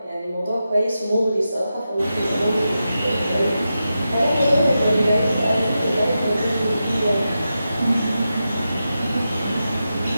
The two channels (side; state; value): both; inverted; correlation -0.90